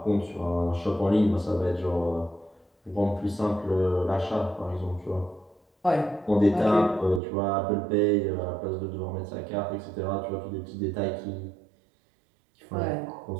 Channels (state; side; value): drops out; left; at 7.2 s